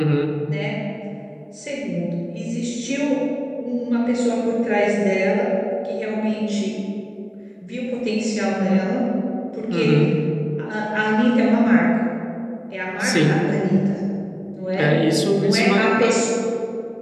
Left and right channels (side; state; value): both; identical; correlation 1.00